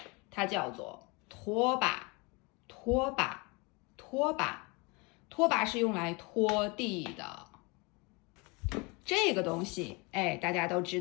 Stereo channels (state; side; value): quieter; right; 28.3 dB